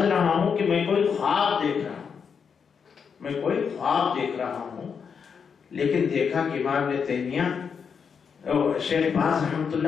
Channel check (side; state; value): right; quieter; 6.4 dB